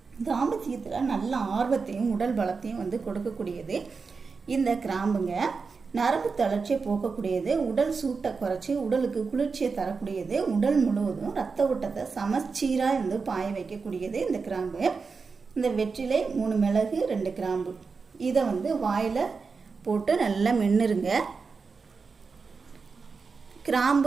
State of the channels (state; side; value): quieter; left; 4.8 dB